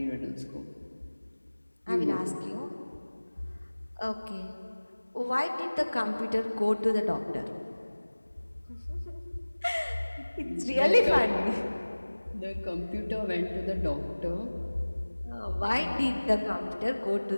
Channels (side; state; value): both; inverted; correlation -1.00